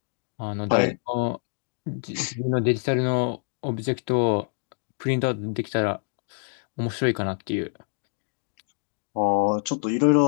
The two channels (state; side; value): silent; right; digital silence